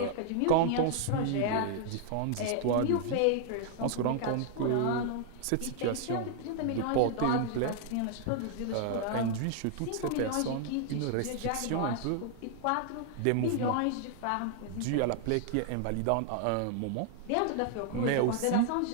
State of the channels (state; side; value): different; both; correlation 0.00